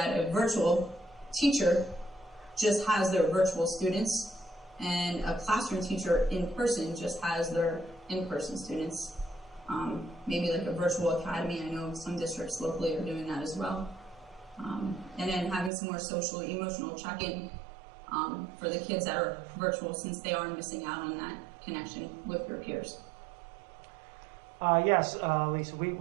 a virtual teacher just has their virtual students and a classroom teacher in person just has their in-person students. Maybe like a virtual academy. I know some districts locally are doing that as well. And then having some more social, emotional check-in for the kids that are virtual, since they are missing out on that connection with their peers. Yes, Lisa,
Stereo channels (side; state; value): left; drops out; at 15.7 s